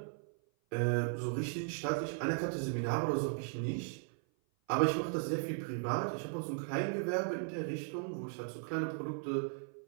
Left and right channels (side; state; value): left; silent; 53 dB below the other